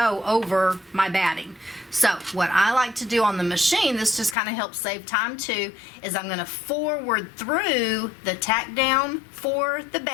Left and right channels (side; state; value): right; drops out; at 4.4 s